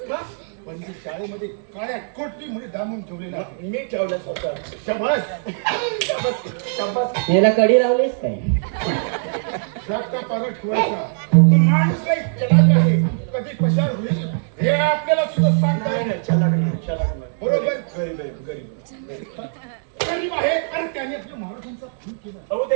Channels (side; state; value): left; silent; digital silence